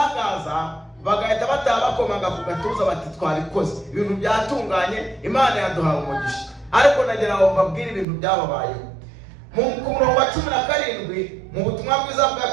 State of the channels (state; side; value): drops out; left; at 8.1 s